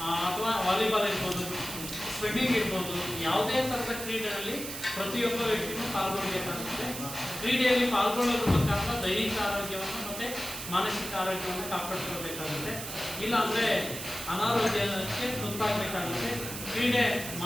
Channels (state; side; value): noise; right; hiss, 8 dB below the sound